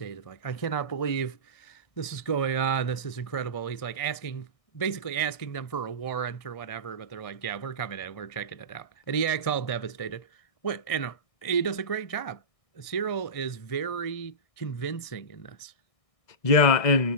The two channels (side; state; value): right; late; 1.6 ms